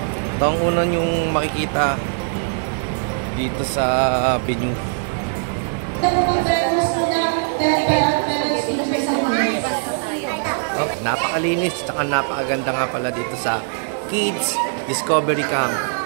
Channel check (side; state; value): left; silent; digital silence